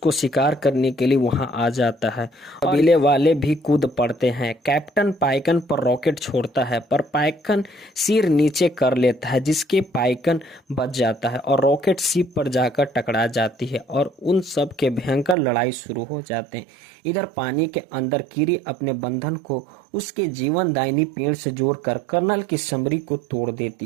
शिकार करने के लिए वहां आ जाता है। कबीले वाले भी कूद पड़ते हैं। कैप्टन पाइकन पर रॉकेट छोड़ता है, पर पाइकन सिर नीचे कर लेता है, जिसके पाइकन बच जाता है और रॉकेट शिप पर जाकर टकरा जाती है और उन सब के भयंकर लड़ाई शुरू हो जाते हैं। इधर पानी के अंदर कीरी अपने बंधन को उसके जीवनदायिनी पेड़ से जोड़कर कर्नल की समरी को तोड़ देती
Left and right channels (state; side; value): drops out; left; at 15.4 s